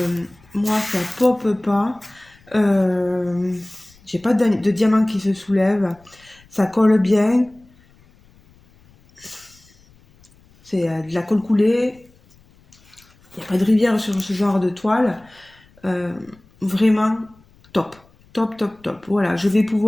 ça pop pas. J'ai pas de diamant qui se soulève. Ça colle bien. C'est de la colle coulée. Il n'y a pas de rivière sur ce genre de toile. Euh, Vraiment top. Top, top, top. Voilà, je vais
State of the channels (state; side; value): noise; left; rumble, 29 dB below the sound